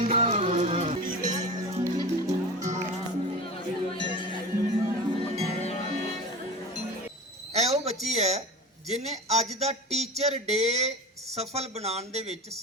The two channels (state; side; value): normal; both; correlation 0.31